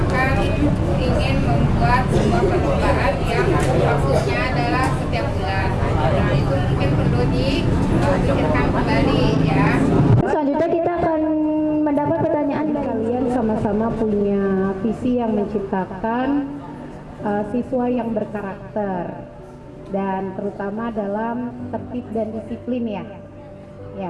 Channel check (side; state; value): both; identical; correlation 1.00